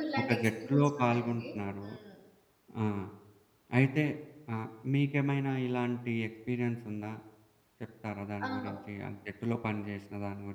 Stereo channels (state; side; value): identical; both; correlation 1.00